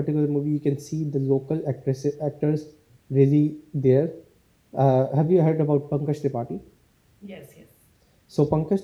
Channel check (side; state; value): both; identical; correlation 1.00